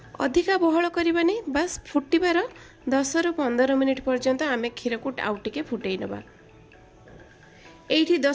अधिका बहल करबानी बस फुटिबार 10 ରୁ 15 मिनिट पर्यंत आमे क्षीर को आउ टिके फुटेइ नबा। एठी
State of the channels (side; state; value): both; identical; correlation 1.00